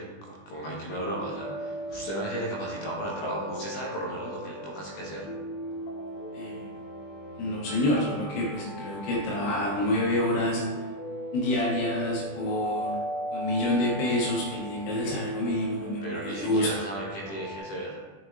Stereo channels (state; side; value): late; right; 20 ms